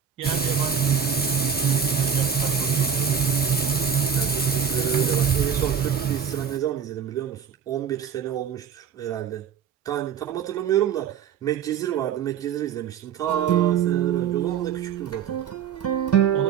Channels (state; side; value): quieter; left; 7.8 dB